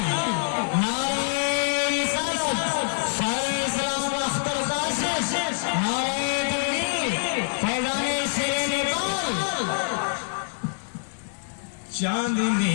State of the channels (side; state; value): right; silent; digital silence